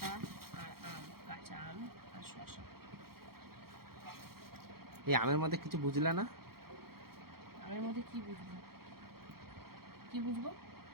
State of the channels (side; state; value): left; late; 0.94 ms